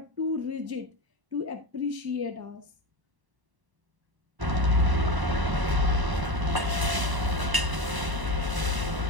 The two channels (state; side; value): late; left; 1.0 ms